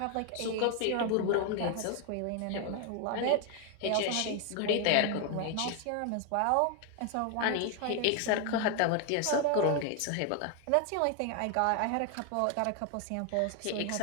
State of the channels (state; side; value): different; both; correlation 0.01